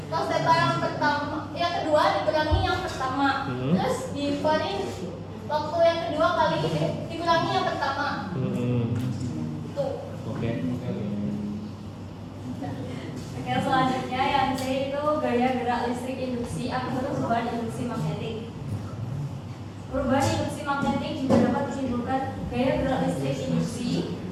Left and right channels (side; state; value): both; identical; correlation 1.00